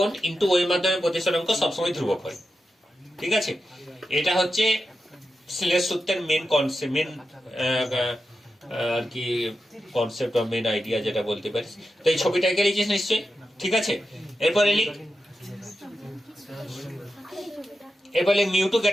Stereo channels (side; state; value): both; normal; correlation 0.90